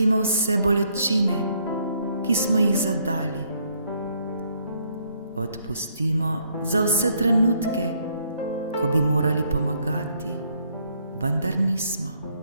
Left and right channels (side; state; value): both; inverted; correlation -0.69